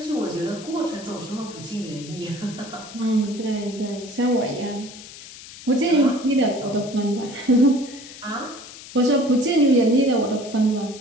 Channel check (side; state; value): left; noise; hiss, 16 dB below the sound